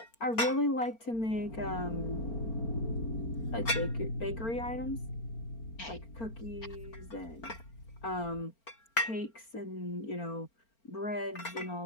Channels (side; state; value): right; late; 4.4 ms